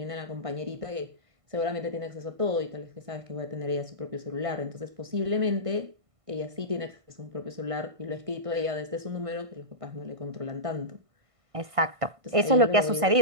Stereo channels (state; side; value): late; left; 1.5 ms